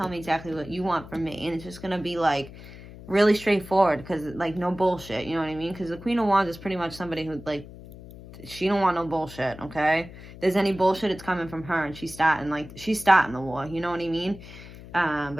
me exactly what you want from me. And it's just going to be, like, really straightforward because, like, no bullshit. You know what I mean? Because the Queen of Wands is pretty much somebody who, like, she don't want no bullshit, okay? If there's any bullshit, it's coming from her, and she's starting the war. You know what I mean?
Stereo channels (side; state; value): left; noise; hum, 16 dB below the sound